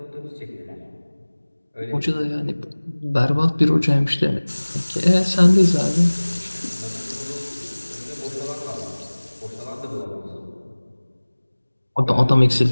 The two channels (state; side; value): inverted; both; correlation -1.00